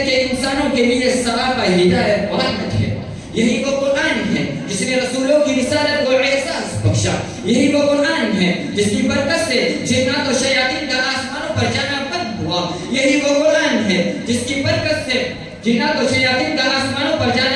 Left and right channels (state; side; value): identical; both; correlation 1.00